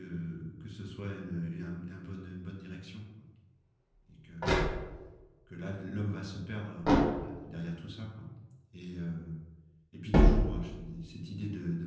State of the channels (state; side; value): identical; both; correlation 1.00